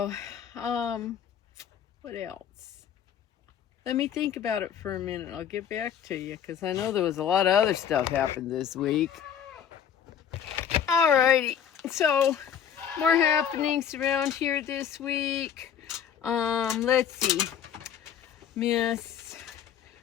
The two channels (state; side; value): quieter; right; 8.7 dB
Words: What else? Let me think about it for a minute. I'll get back to you, because I know there was a lot of other stuff happened this week. Alrighty, so more happenings around here this week. Let's see. Miss